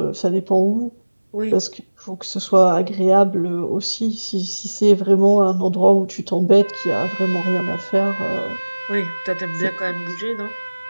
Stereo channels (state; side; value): inverted; both; correlation -1.00